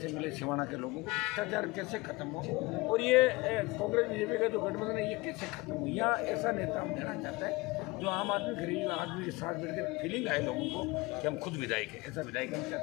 मिले सिवाना के लोगों को, भ्रष्टाचार कैसे खत्म हो, और ये कांग्रेस बीजेपी का जो गठबंधन है ये कैसे खत्म हो। या ऐसा नेता हम देना चाहते हैं जो आम आदमी गरीब आदमी के साथ मिलकर फीलिंग आए लोगों को कि हम खुद विधायक हैं, ऐसा विधायक हम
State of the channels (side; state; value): right; quieter; 23.2 dB